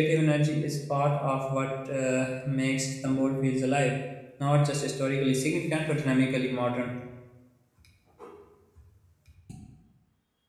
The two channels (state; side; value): identical; both; correlation 1.00